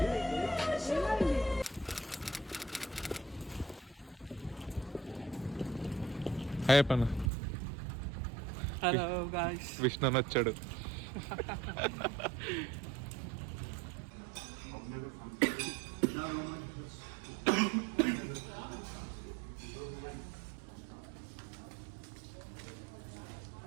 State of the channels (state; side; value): drops out; left; at 7.3 s